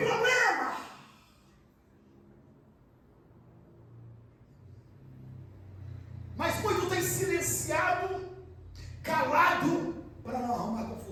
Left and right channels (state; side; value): identical; both; correlation 1.00